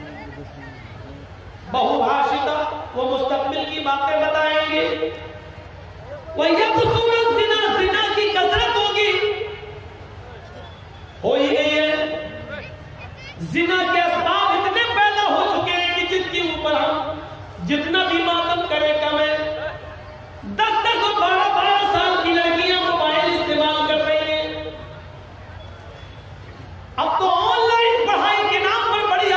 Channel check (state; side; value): identical; both; correlation 1.00